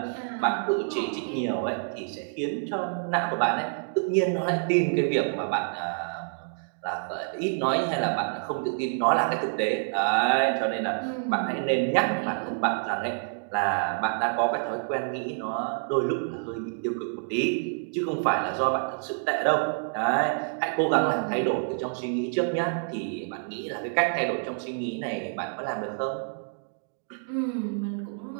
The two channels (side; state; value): left; silent; digital silence